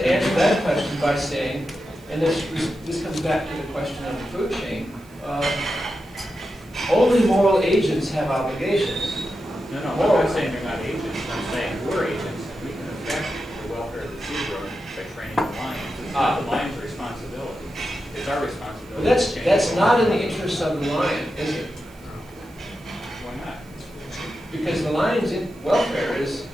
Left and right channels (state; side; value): noise; right; hiss, 28 dB below the sound